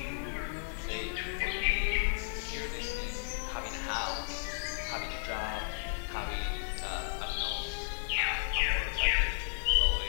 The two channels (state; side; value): silent; right; digital silence